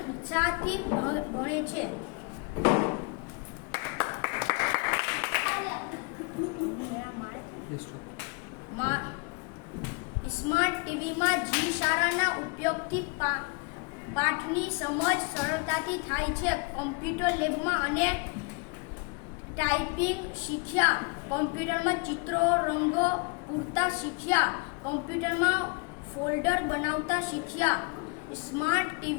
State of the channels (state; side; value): quieter; right; 30.9 dB